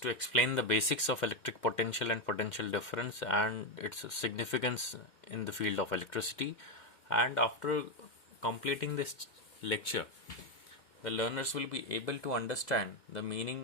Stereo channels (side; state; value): right; late; 2.1 ms